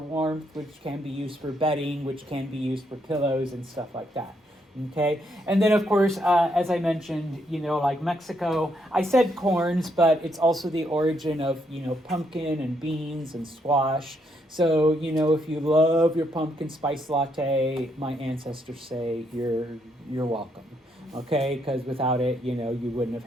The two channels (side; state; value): both; normal; correlation 0.75